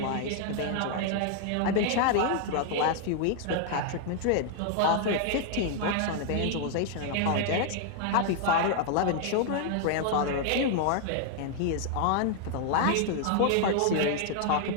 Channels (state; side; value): different; both; correlation 0.00